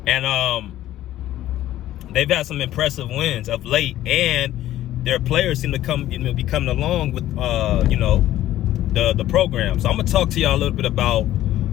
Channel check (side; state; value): right; quieter; 13.7 dB